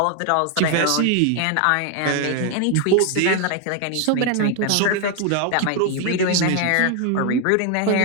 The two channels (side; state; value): both; different; correlation 0.01